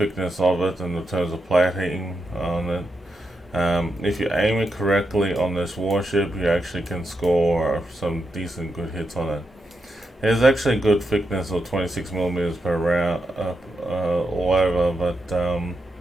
of it in the terms of plating on it. If you aim it correctly on this warship, you actually can score some decent good hits on it. There's actually a good thickness of 26 millimeters per round all over, but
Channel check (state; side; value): normal; both; correlation 0.85